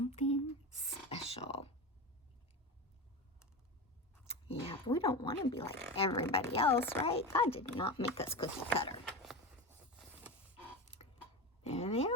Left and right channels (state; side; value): normal; both; correlation 0.23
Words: special. Yeah, but we don't want to be like everybody else, right? God did not make us cookie cutter. There they